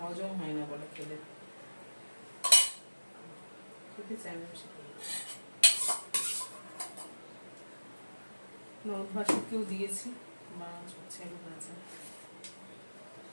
হয় না বলে খেলে, খেতে চায় না বেশি। নরম ভাষাকেও দিয়েছি, মাছ হচ্ছে ভাজা।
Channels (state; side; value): inverted; both; correlation -1.00